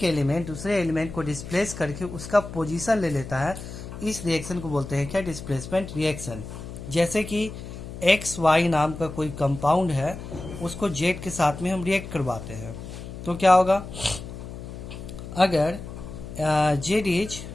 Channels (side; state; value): left; noise; hum, 11 dB below the sound